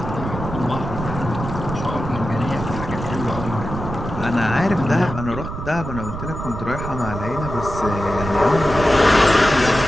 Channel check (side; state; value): right; noise; rumble, 7 dB below the sound